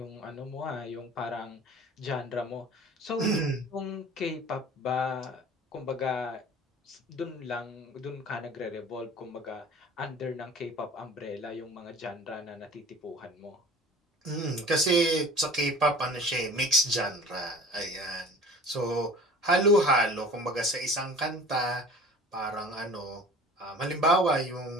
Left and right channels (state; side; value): normal; both; correlation 0.44